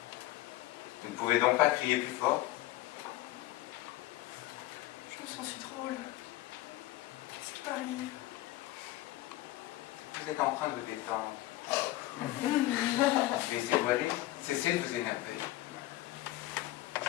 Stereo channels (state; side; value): quieter; right; 16.3 dB